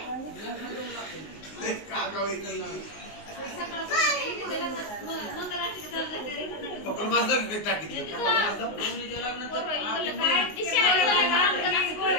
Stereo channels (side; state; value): right; late; 19 ms